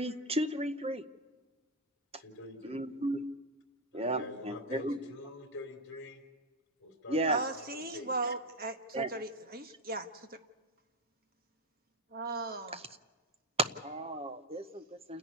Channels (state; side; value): normal; both; correlation 0.09